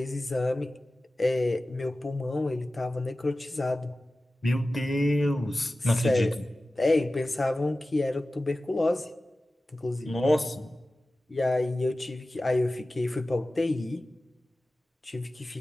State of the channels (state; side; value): normal; both; correlation 0.96